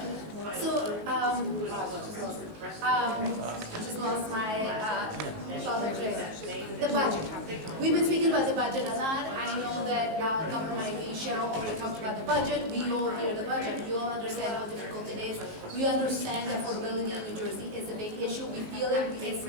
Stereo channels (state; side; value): late; left; 19 ms